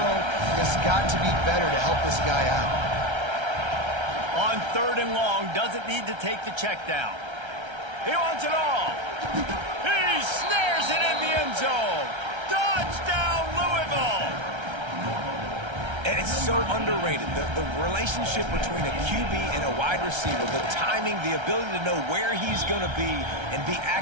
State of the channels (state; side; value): late; left; 1.3 ms